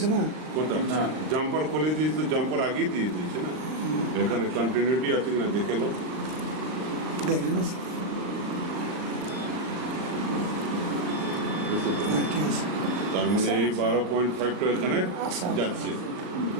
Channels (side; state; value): left; late; 38 ms